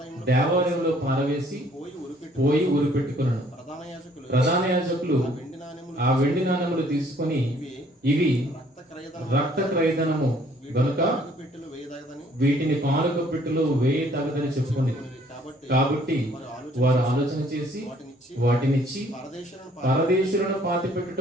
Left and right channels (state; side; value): normal; both; correlation 0.61